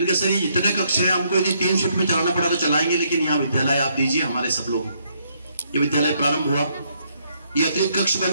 कहा सर ये जितने कक्ष हैं हमको यदि 3 शिफ्ट में चलाना पड़ा तो चलाएंगे, लेकिन यहाँ विद्यालय आप दीजिए हमारे सब लोग। ये विद्यालय प्रारंभ हुआ। ये अतिरिक्त कक्ष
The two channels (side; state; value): both; inverted; correlation -0.72